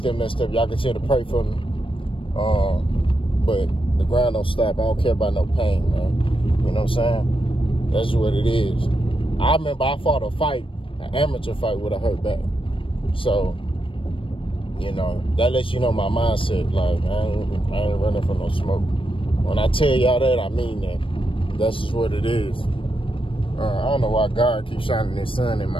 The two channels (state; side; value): late; right; 0.25 ms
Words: messed up. Y'all continue to pray for me. But the grind don't stop. I don't care about no pain, man. You know what I'm saying? That's what it is. I remember I fought a fight, an amateur fight with a hurt back. So, you know, that lets you know my mindset. Like, I ain't running for no smoke. When I tell y'all that, I mean that. That's just what it is. I don't know why God keeps shining his sun in